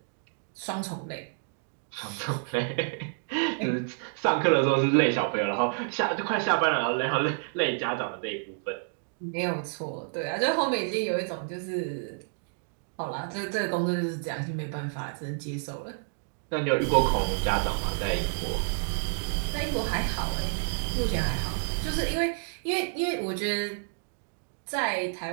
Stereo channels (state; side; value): silent; left; digital silence